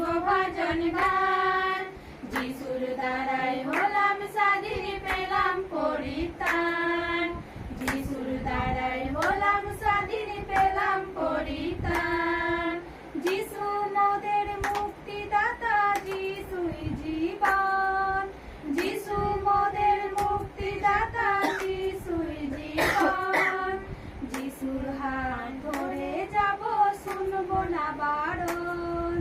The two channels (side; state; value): both; identical; correlation 1.00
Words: ভজন গান। যিশুর দ্বারাই হলাম স্বাধীন, পেলাম পরিত্রাণ। যিশুর দ্বারাই হলাম স্বাধীন, পেলাম পরিত্রাণ। যিশু মোদের মুক্তিদাতা, যিশুই জীবন। যিশু মোদের মুক্তিদাতা, যিশুই জীবন। যিশুর হাত ধরে যাব, শুনবো না বারণ।